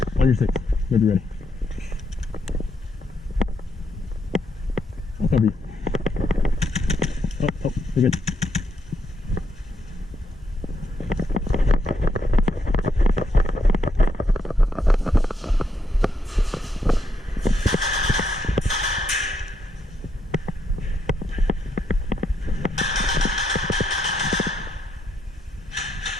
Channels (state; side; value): normal; both; correlation 0.78